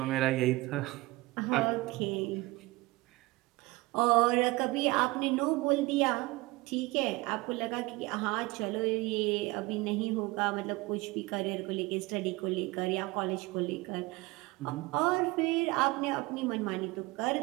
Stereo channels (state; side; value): quieter; left; 21.7 dB